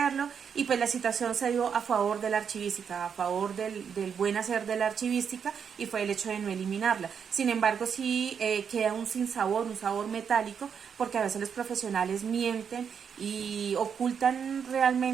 y pues la situación se dio a favor de la archivística, a favor del buen hacer de la archivística y fue el hecho de no eliminarla. Sin embargo sí queda un sinsabor, un sabor metálico porque a veces los profesionales mienten y ocultan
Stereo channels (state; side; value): quieter; left; 7.1 dB